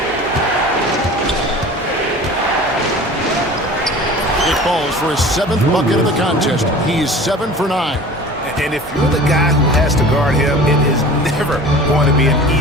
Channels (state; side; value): normal; both; correlation 0.41